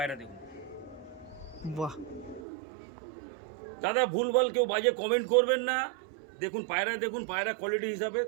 দেখুন বাহ, দাদা, ভুলভাল কেউ বাজে কমেন্ট করবেন না। দেখুন পায়রা, দেখুন পায়রা কোয়ালিটি হিসাবে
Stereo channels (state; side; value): drops out; left; at 2.4 s